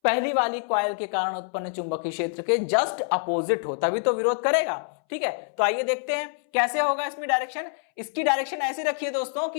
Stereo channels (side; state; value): right; silent; 61 dB below the other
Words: पहली वाली कॉइल के कारण उत्पन्न चुंबकीय क्षेत्र के जस्ट अपोजिट हो, तभी तो विरोध करेगा। ठीक है, तो आइए देखते हैं कैसे होगा इसमें डायरेक्शन। इसकी डायरेक्शन ऐसे रखिए दोस्तों